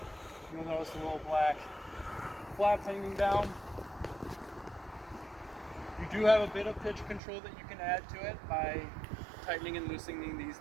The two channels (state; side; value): drops out; left; at 7.2 s